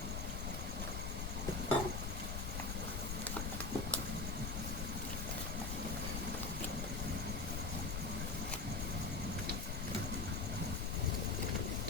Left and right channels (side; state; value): left; noise; rumble, 1 dB below the sound